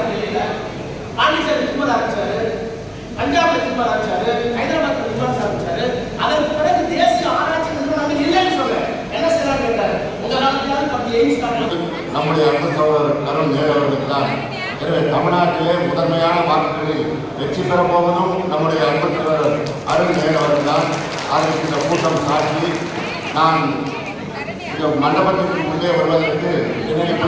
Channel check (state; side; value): identical; both; correlation 1.00